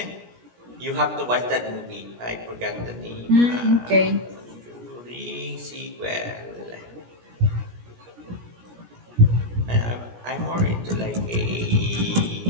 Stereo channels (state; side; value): late; left; 17 ms